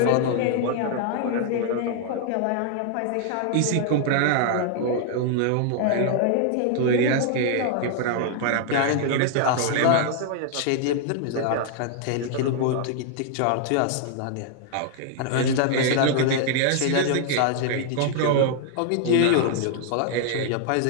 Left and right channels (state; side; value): different; both; correlation 0.00